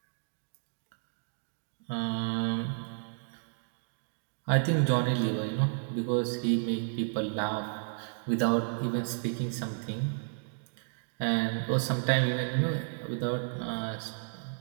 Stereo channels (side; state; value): left; silent; digital silence